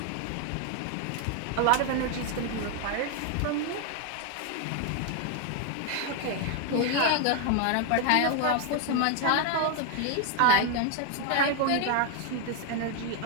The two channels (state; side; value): different; both; correlation 0.01